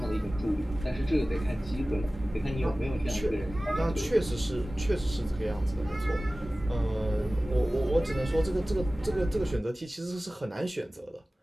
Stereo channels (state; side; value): normal; both; correlation 0.97